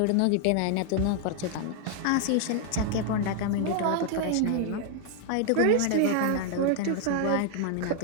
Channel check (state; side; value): different; both; correlation 0.00